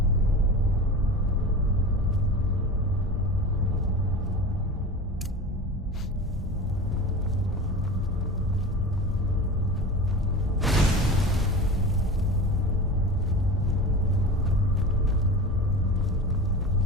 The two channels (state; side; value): normal; both; correlation 0.32